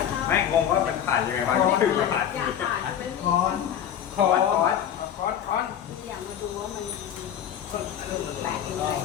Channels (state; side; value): quieter; right; 9.6 dB